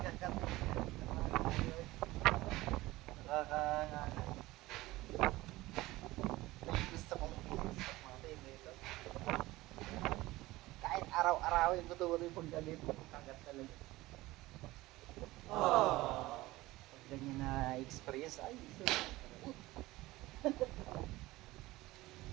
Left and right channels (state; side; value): quieter; left; 18.8 dB